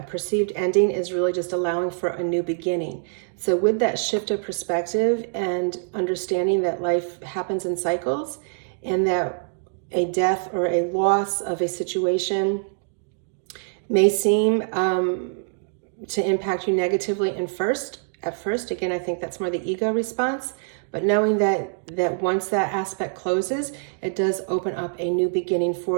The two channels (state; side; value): silent; left; digital silence